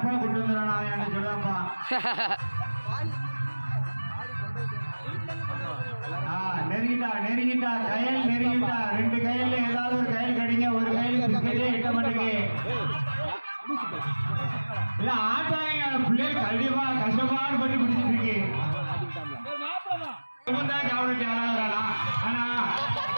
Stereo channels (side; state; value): both; inverted; correlation -1.00